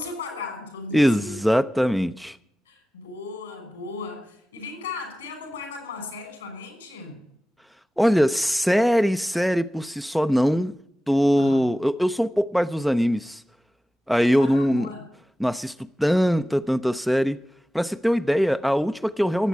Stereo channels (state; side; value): normal; both; correlation 0.96